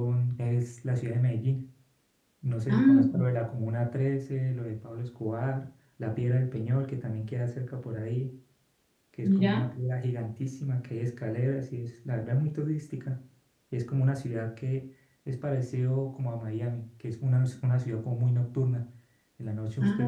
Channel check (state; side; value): identical; both; correlation 1.00